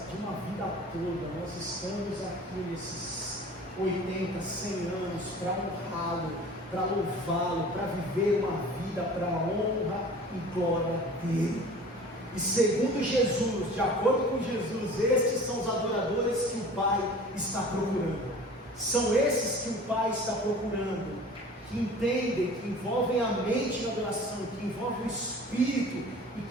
de uma vida toda. Nós estamos aqui nesses 80, 100 anos para honrá-lo, para louvá-lo, para viver uma vida para a honra e glória dele. E segundo Jesus, de acordo com Jesus, estes são os adoradores que o Pai está procurando. São esses que o Pai está procurando, que entendem, que envolvem a mente na adoração, que envolvem o espírito e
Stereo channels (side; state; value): both; normal; correlation 0.43